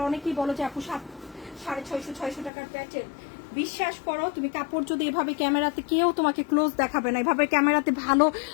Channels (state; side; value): drops out; right; at 2.5 s